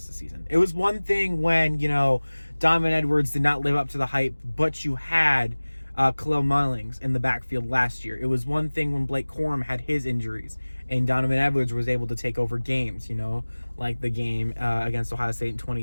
of the season? It was one thing when, Donovan Edwards did not live up to the hype, but you had Khalil Mullings in the backfield last year. It was one thing when Blake Corum had his injuries and Donovan Edwards was able to take over games, like the game against Ohio State in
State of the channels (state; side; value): inverted; both; correlation -1.00